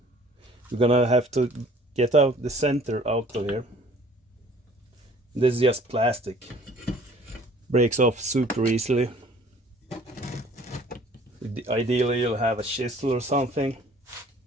You're gonna have to get out the center out of here. This is just plastic, breaks off super easily. Ideally you'll have a chisel or something.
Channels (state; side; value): normal; both; correlation 0.53